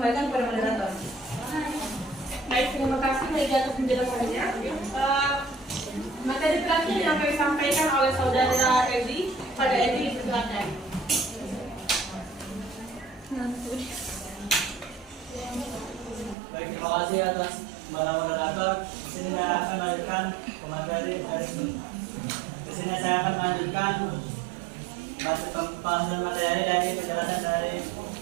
kepada moderator. Baik, terima kasih Megi atas penjelasannya. Materi terakhir yang kami sampaikan oleh saudara Edi. Pada Edi, silakan. Baik, terima kasih atas para moderator. Di sini saya akan melanjutkan materi dari di sini saya akan melanjutkan pembahasan materi dari penjelasan dari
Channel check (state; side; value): drops out; left; at 16.4 s